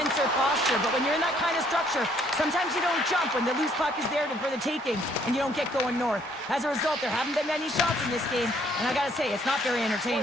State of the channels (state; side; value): normal; both; correlation 0.65